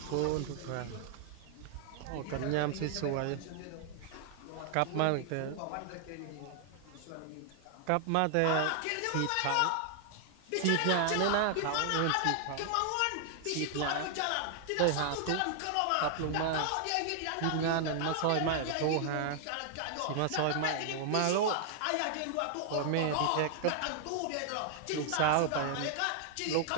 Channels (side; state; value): both; different; correlation 0.00